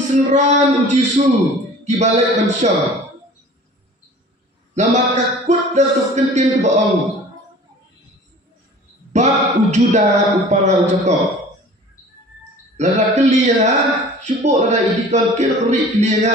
ujisu kibalik bansyam nama kakut dan tukentin kebaong bab ujuda upara ujakob lada keliha syubuk lada idikon kira kerik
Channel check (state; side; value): normal; both; correlation 0.45